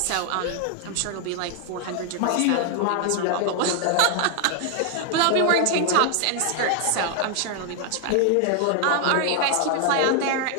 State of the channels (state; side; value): different; both; correlation 0.00